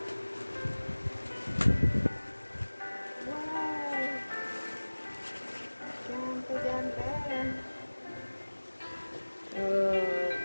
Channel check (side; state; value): both; inverted; correlation -1.00